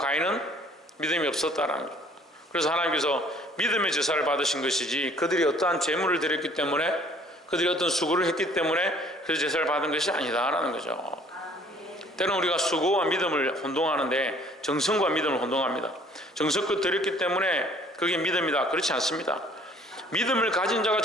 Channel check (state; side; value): normal; both; correlation 0.56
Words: 믿음이 없었다라는 거죠. 그래서 하나님께서 믿음의 제사를 받으신 것이지 그들이 어떠한 제물을 드렸기 때문에, 그들이 어떤 수고를 했기 때문에 그 제사를 받은 것이 아니다라는 거죠. 때로는 우리가 수고와 믿음을 혼동하는데 정성과 믿음을 혼동합니다. 정성껏 드렸기 때문에 그게 믿음이다, 그렇지 않습니다. 믿음을 가진 자가